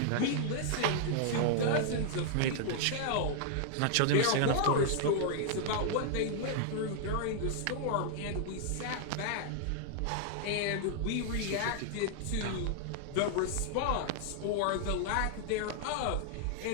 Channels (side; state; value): both; different; correlation 0.00